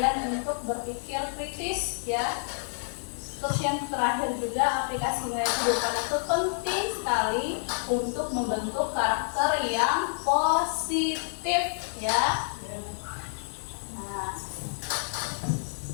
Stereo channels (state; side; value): silent; right; 59 dB below the other